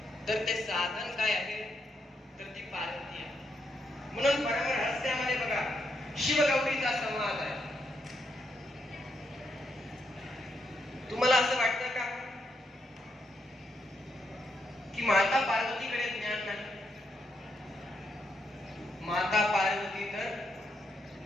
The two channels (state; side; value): normal; both; correlation 0.80